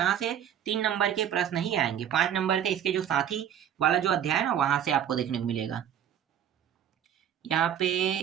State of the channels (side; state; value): left; quieter; 9.7 dB